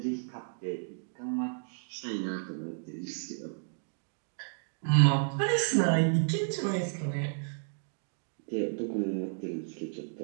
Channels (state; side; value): silent; left; digital silence